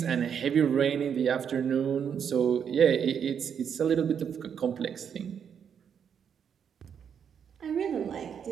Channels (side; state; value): left; quieter; 7.7 dB